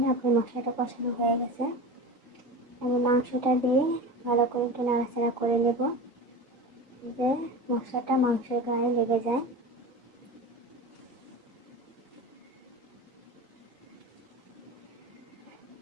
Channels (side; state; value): both; normal; correlation 0.30